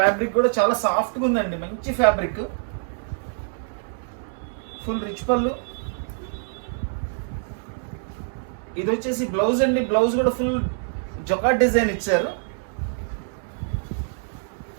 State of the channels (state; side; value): silent; left; 62 dB below the other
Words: కూడా చాలా సాఫ్ట్గా ఉందండి, మంచి ఫ్యాబ్రిక్. ఫుల్ రిచ్ పళ్ళు. ఇది వచ్చేసి బ్లౌజ్ అండి. బ్లౌజ్ కూడా ఫుల్ జొకాట్ డిజైన్ ఇచ్చారు.